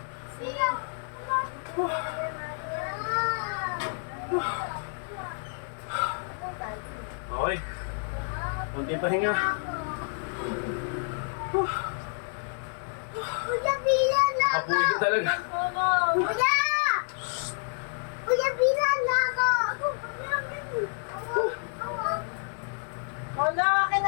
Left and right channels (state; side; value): silent; right; 59 dB below the other